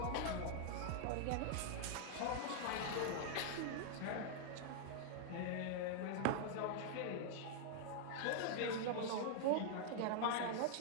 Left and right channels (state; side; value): different; both; correlation 0.00